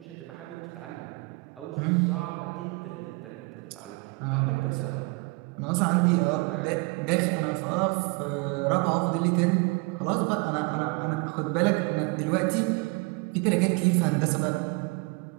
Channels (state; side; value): quieter; left; 27.6 dB